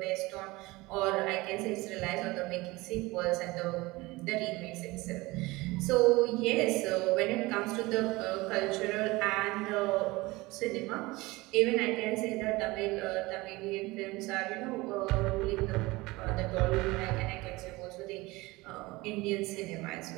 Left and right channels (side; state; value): left; quieter; 21.6 dB